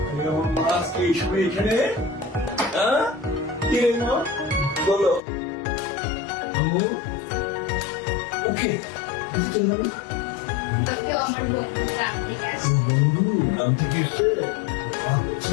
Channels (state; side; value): drops out; right; at 5.2 s